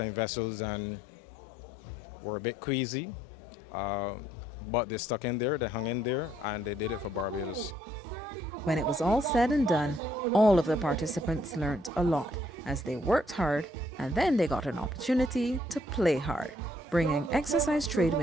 vessels and were a bit queasy, but they stuck in there, they hung in there, and they did it for Barbados. When it was all said and done, all of the participants learnt a lot as they worked hard, and then they got an opportunity to play hard, bringing Exercise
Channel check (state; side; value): normal; both; correlation 0.68